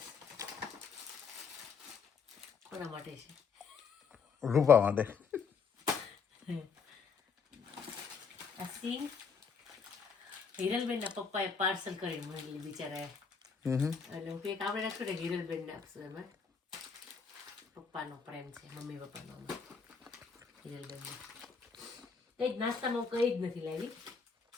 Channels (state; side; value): quieter; right; 5.7 dB